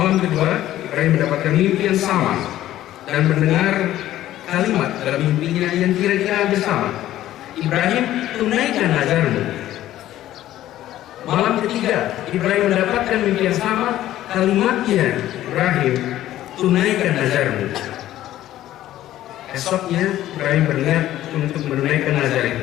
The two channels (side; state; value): right; quieter; 13.6 dB